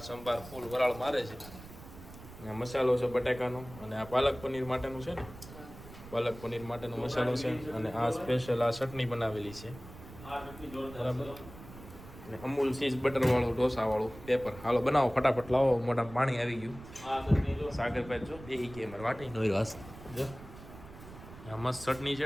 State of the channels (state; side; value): noise; right; rumble, 16 dB below the sound